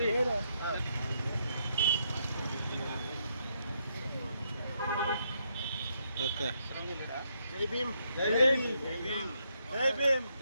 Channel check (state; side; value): inverted; both; correlation -0.76